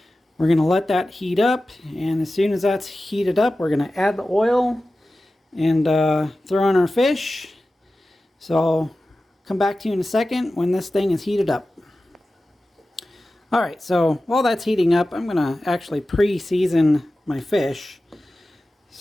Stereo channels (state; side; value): normal; both; correlation 0.95